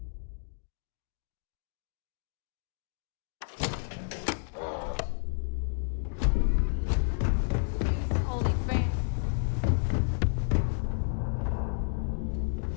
The fleet's the only family you need.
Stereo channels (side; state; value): right; silent; digital silence